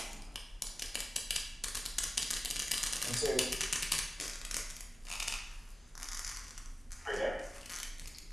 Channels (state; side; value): normal; both; correlation 0.98